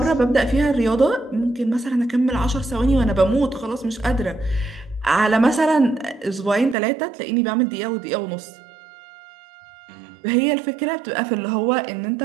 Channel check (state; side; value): drops out; left; at 6.8 s